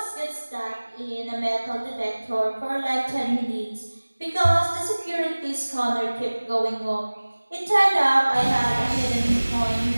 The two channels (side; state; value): both; inverted; correlation -1.00